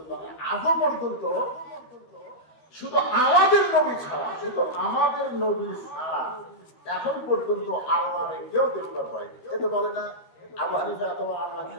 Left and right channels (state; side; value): late; right; 13 ms